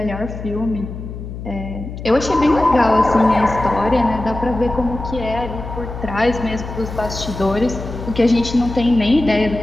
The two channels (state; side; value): noise; left; hum, 9 dB below the sound